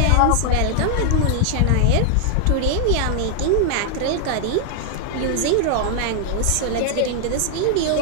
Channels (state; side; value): different; both; correlation 0.00